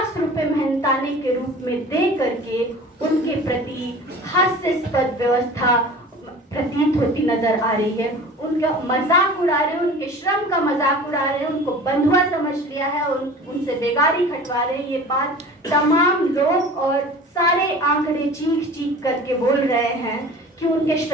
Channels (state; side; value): normal; both; correlation 0.41